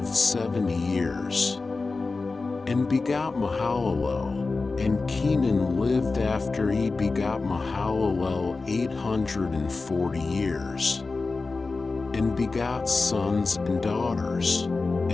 70 years, and begot Mahalalel. And Kenan lived after he begot Mahalalel 840 years, and begot sons and daughters.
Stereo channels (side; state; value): right; quieter; 3.9 dB